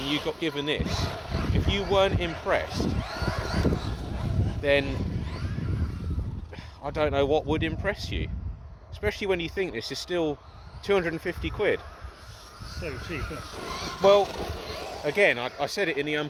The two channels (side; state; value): both; identical; correlation 1.00